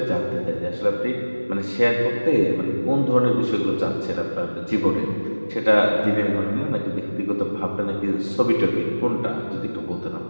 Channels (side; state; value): both; inverted; correlation -1.00